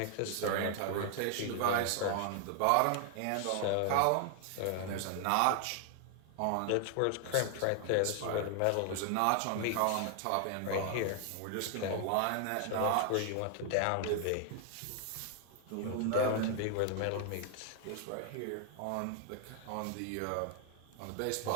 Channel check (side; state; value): both; different; correlation 0.00